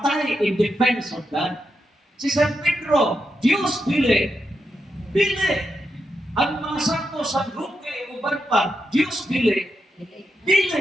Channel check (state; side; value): normal; both; correlation 0.85